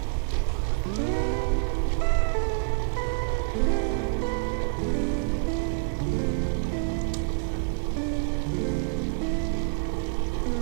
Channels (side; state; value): left; silent; 60 dB below the other